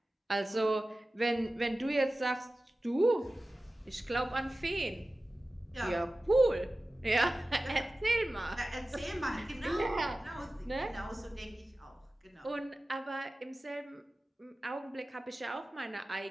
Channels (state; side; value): normal; both; correlation 0.96